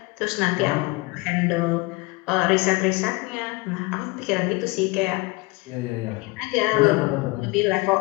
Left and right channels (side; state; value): right; quieter; 24.4 dB